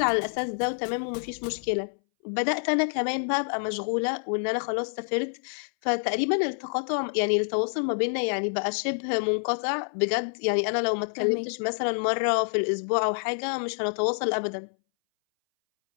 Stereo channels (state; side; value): silent; right; 60 dB below the other